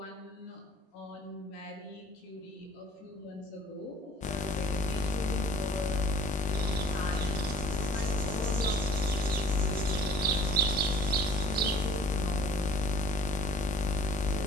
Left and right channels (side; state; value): both; normal; correlation 0.52